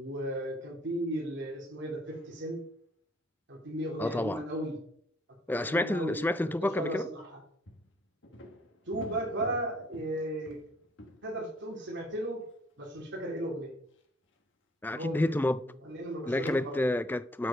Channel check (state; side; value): normal; both; correlation 0.62